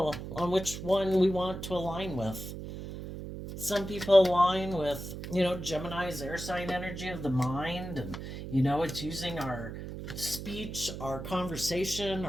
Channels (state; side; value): noise; right; hum, 8 dB below the sound